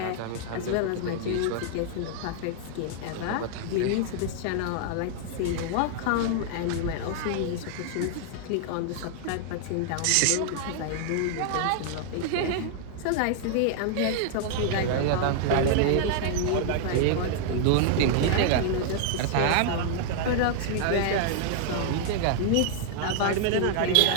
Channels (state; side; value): different; both; correlation -0.01